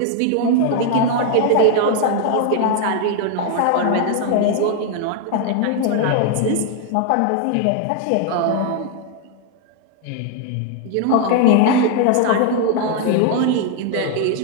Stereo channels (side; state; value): both; different; correlation 0.00